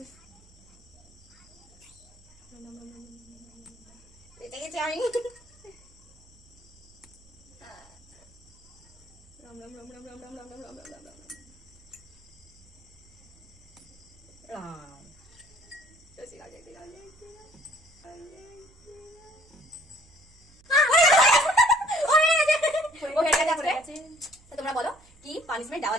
বেঁচে গেছি আমি। রাম রাম রাম রাম রাম রাম রাম রাম রাম রাম রাম রাম রাম। ঠিক আছে, ঠিক আছে, তোমরা বলো কি পানিশমেন্ট দেওয়া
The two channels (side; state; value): right; noise; hum, 27 dB below the sound